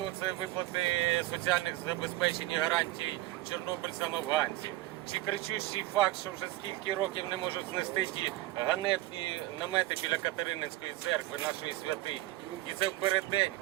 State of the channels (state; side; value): quieter; left; 17.2 dB